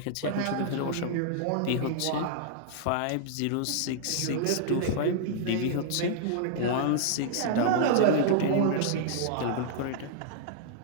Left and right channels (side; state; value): both; different; correlation -0.01